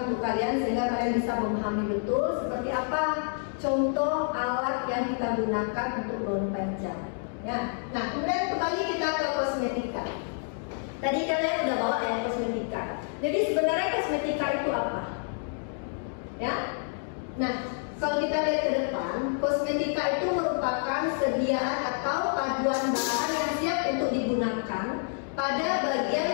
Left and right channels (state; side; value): silent; right; 59 dB below the other